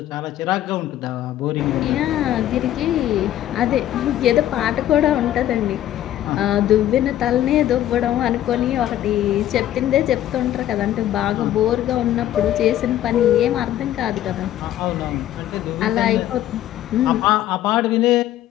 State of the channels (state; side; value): quieter; right; 12.6 dB